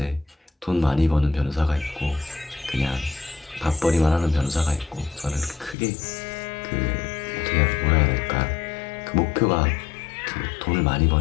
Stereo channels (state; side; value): drops out; right; at 5.8 s